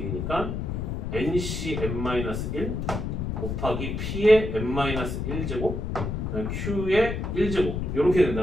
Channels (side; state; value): left; noise; rumble, 3 dB below the sound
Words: ncn-1 곱하기 p의 n-1제곱 q의 1제곱 이렇게